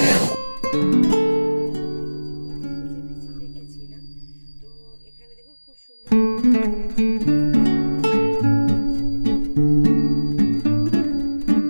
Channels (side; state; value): both; inverted; correlation -1.00